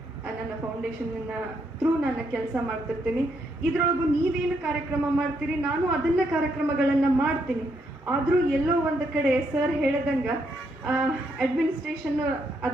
ನನ್ನ ಫೌಂಡೇಶನ್ನ ಥ್ರೂ ನಾನು ಕೆಲಸ ಮಾಡ್ತಿರ್ತೀನಿ. ಇದರೊಳಗೂ ನೀವೇನು ಕಾರ್ಯಕ್ರಮ ಮಾಡ್ತೀರಿ ನಾನು ಅದನ್ನ ಕಾರ್ಯಕ್ರಮಗಳನ್ನು ಮಾಡ್ತೀನಿ. ಆದರೂ ಎಲ್ಲೋ ಒಂದು ಕಡೆ ಸರ್ ಹೇಳ್ದಂಗೆ ಅಡ್ಮಿನಿಸ್ಟ್ರೇಷನ್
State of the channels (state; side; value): normal; both; correlation 0.76